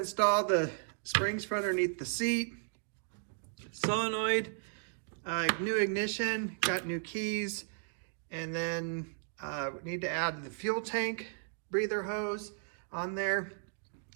the springs for underneath the seat, solenoid, new ignition, got new keys, and then we need to add the fuel tank breather hose on there.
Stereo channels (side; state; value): left; silent; digital silence